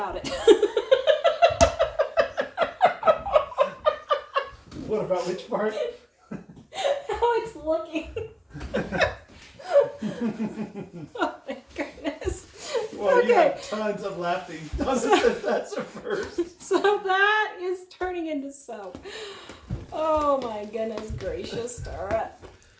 it? What about which part? How it's looking. Oh my goodness. Well, Okay. you have tons of laughing. Donna says that's a first. So that is turning into soap. Oh my goodness gracious, Tara.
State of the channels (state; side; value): identical; both; correlation 1.00